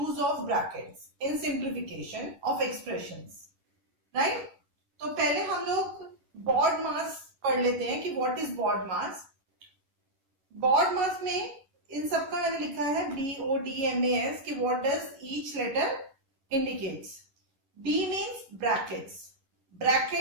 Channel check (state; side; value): late; left; 11 ms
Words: of brackets in simplification of expressions. Right? तो पहले हम लोग BODMAS पढ़ लेते हैं कि what is BODMAS. BODMAS में इन सब का मैंने लिखा है BODMAS कि what does each letter indicates. B means brackets.